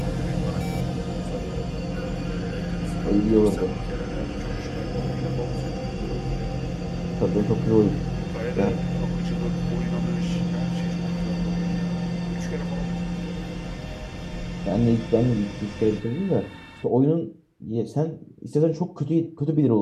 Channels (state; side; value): identical; both; correlation 1.00